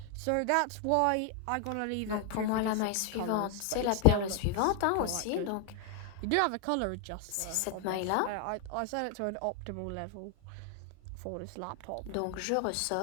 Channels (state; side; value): different; both; correlation 0.00